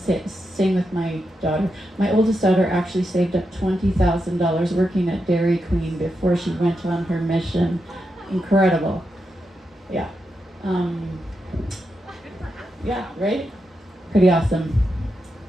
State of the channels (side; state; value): both; normal; correlation 0.86